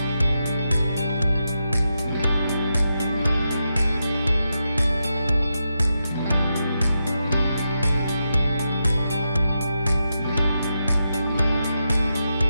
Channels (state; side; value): inverted; both; correlation -0.86